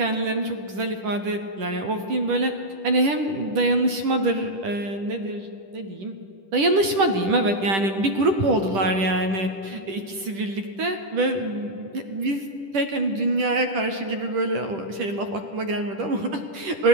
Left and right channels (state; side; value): late; left; 10 ms